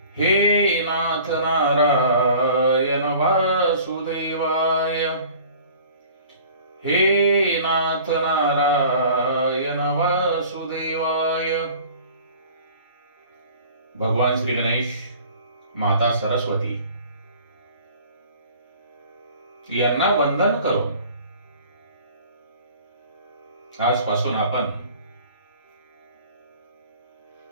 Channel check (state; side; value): inverted; both; correlation -0.47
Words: हे नाथ नारायण वासुदेवाय। हे नाथ नारायण वासुदेवाय। भगवान श्री गणेश, माता सरस्वती यांना वंदन करून आजपासून आपण